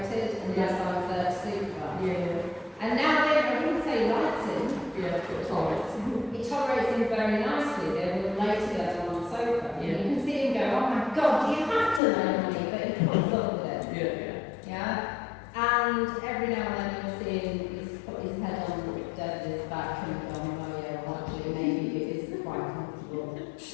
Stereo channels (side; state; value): right; drops out; at 12.0 s